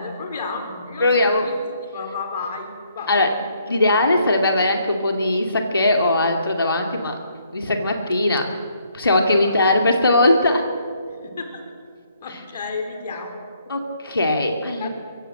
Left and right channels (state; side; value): inverted; both; correlation -0.69